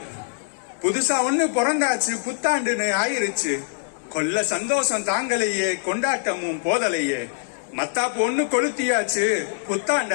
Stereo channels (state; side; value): silent; right; 62 dB below the other